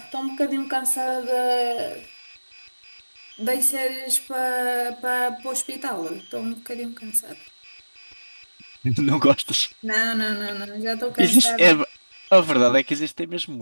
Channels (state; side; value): inverted; both; correlation -1.00